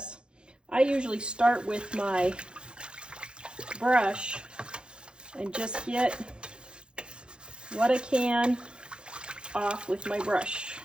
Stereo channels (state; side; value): late; left; 0.051 ms